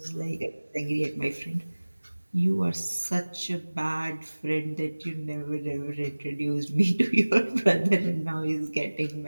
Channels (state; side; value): inverted; both; correlation -1.00